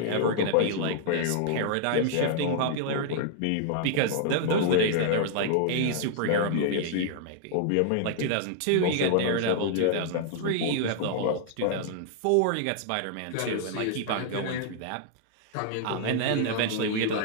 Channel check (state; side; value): different; both; correlation -0.01